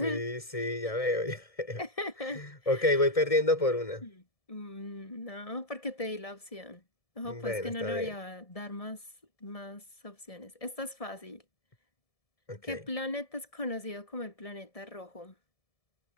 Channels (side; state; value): right; late; 1.7 ms